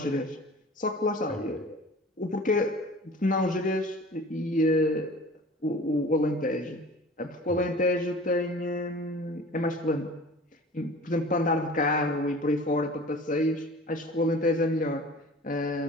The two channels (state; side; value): normal; both; correlation 0.42